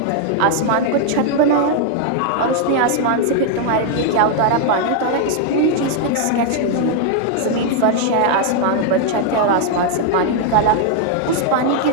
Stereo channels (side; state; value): both; different; correlation 0.00